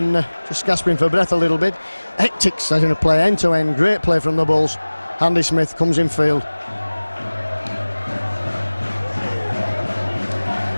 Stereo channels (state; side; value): inverted; both; correlation -1.00